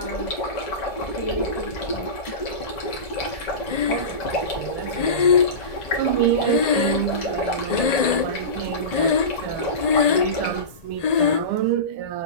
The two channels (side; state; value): right; late; 1.8 ms